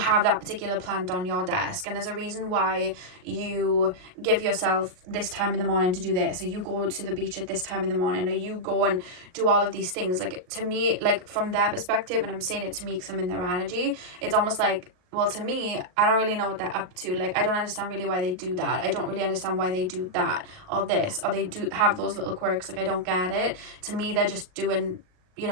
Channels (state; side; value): late; left; 38 ms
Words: that particular plant on your desk, and there's a reason why you give yourself this time in the morning to do this, or you go to the beach at this time in the morning, or you go and do all of these things. Like, to me, like from their perspective, and I'm saying it to me because I'm in their energy, it's almost like, well, to me, I don't really know what they're up to. Like, I don't understand really why they do that. I don't really understand why they do that or this, or they do have those little quirks. Like, I don't get it. To me, they're just doing, you